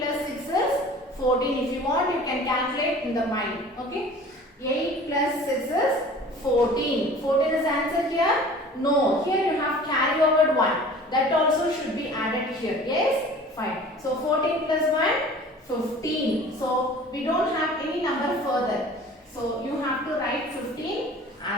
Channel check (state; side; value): normal; both; correlation 0.45